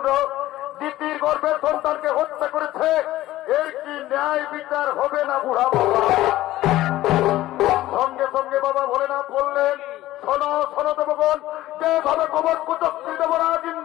দিতির গর্ভের সন্তানকে হত্যা করেছে, এর কি ন্যায় বিচার হবে না বুড়া বাবা? সঙ্গে সঙ্গে বাবা ভোলেনাথ বললেন, শোনো শোনো দেবগণ, যেভাবে কপট কুচক্রী দেবরাজ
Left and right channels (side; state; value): right; quieter; 15.6 dB